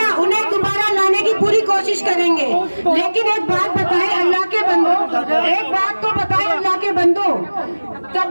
उन्हें दोबारा लाने की पूरी कोशिश करेंगे। लेकिन एक बात बताएं अल्लाह के बंदो, एक बात तो बताएं अल्लाह के बंदो,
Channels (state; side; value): inverted; both; correlation -1.00